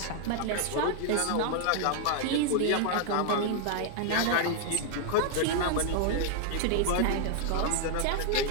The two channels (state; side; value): different; both; correlation 0.00